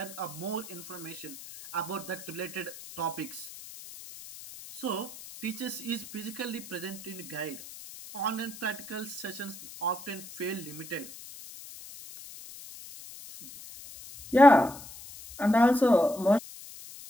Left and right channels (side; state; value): left; noise; hiss, 15 dB below the sound